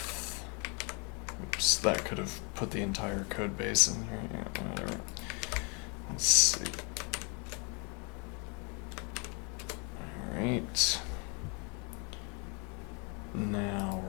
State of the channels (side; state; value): right; quieter; 33.8 dB